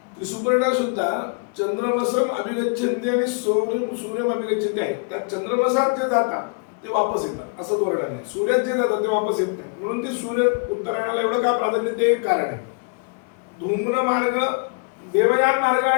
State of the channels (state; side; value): quieter; right; 35.8 dB